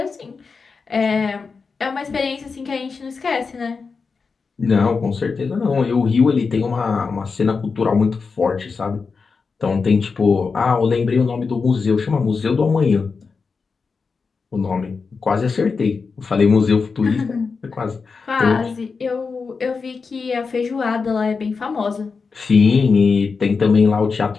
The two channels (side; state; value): right; quieter; 4.9 dB